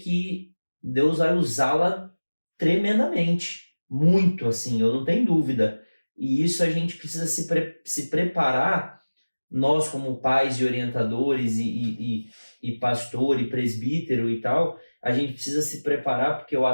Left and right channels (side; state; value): both; inverted; correlation -1.00